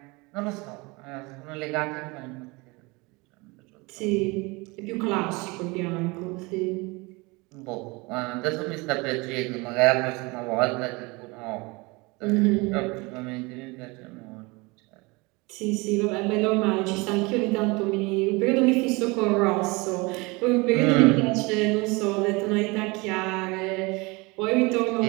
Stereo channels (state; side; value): quieter; left; 25.7 dB